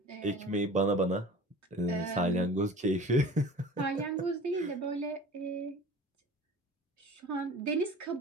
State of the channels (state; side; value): normal; both; correlation 0.41